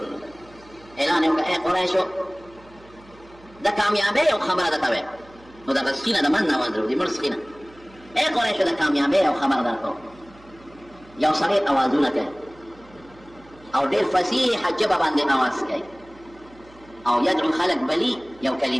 الله. اعلان یو اے قریشو د کامیابی او خبره ده ته نو د سخینه د من نه اواز راوځي. مړ سخینه اے قریشو د کامیابی او خبره درکو. یو سړی اوازونه کوي او ډېر فصیح ژبه باندې اواز کوي او یدعو خلک بلی یو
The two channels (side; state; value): right; noise; hum, 25 dB below the sound